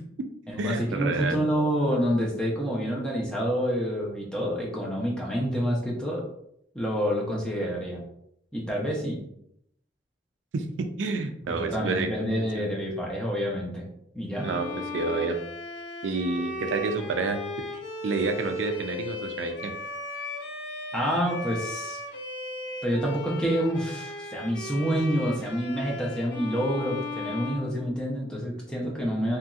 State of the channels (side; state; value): both; normal; correlation 0.60